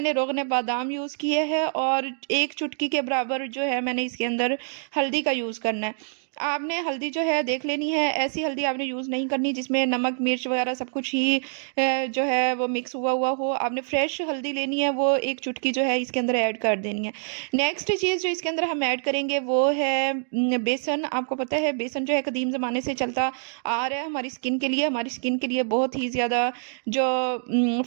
रोगन बादाम यूज़ किए हैं, और 1 चुटकी के बराबर जो है मैंने इसके अंदर हल्दी का यूज़ करना है। आपने हल्दी जो है देख लेनी है, ऐसी हल्दी आपने यूज़ नहीं करनी जिसमें नमक, मिर्च वगैरह सब कुछ ही जो है वो मिक्स हुआ हुआ हो। आपने फ्रेश हल्दी लेनी है, वो 1 चुटकी जो है इसके अंदर ऐड कर देनी है। नेक्स्ट चीज़ जो इसके अंदर हम ऐड करेंगे वो है बेसन। आपको पता है बेसन जो है कदीम ज़माने से चलता आ रहा है, हमारी स्किन के लिए बहुत ही ज़्यादा जो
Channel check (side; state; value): left; silent; digital silence